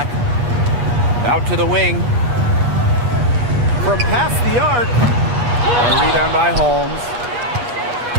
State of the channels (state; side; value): late; left; 8.3 ms